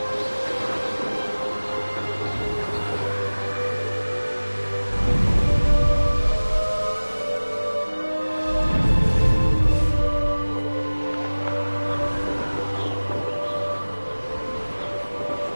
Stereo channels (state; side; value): inverted; both; correlation -1.00